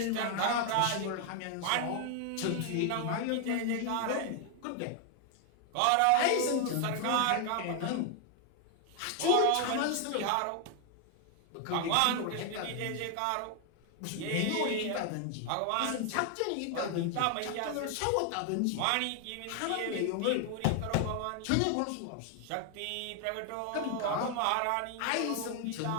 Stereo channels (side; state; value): both; different; correlation 0.00